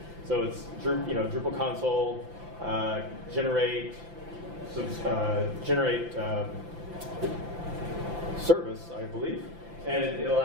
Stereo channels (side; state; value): left; late; 5.9 ms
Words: So it's Drupal Console, generate service, I believe. And it'll